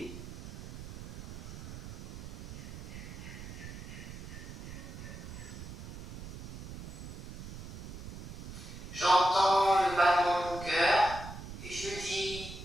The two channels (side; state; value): right; noise; rumble, 10 dB below the sound